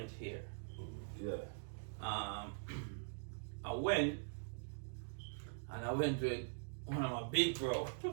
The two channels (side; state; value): left; silent; digital silence